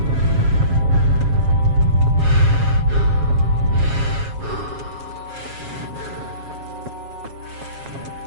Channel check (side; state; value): left; late; 7.3 ms